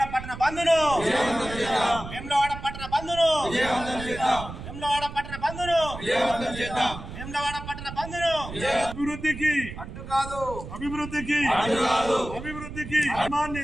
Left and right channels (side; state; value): right; noise; rumble, 11 dB below the sound